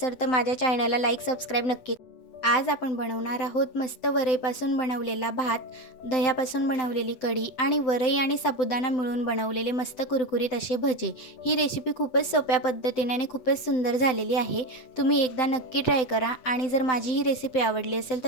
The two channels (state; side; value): late; right; 7.8 ms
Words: तर माझ्या चॅनलला लाईक सबस्क्राईब नक्की आज आपण बनवणार आहोत मस्त वरईपासून बनवलेला भात, दह्यापासून बनवलेली कढी आणि वरई आणि साबुदाणा मिळून बनवलेले मस्त कुरकुरीत असे भजे। ही रेसिपी खूपच सोप्या पद्धतीने आणि खूपच सुंदर झालेली आहे। तुम्ही एकदा नक्की ट्राय करा आणि जर माझी ही रेसिपी आवडली असेल